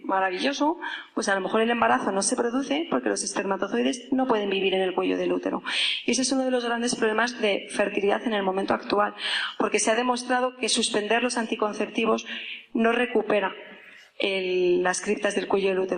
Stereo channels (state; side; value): identical; both; correlation 1.00